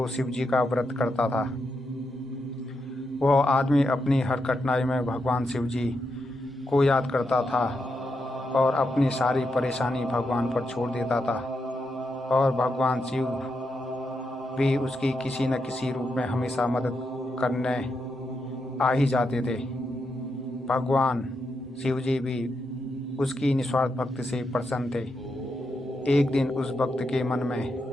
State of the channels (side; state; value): both; normal; correlation 0.84